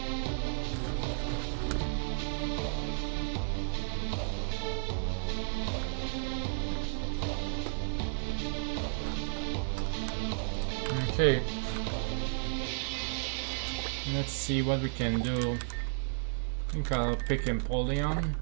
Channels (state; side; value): silent; left; digital silence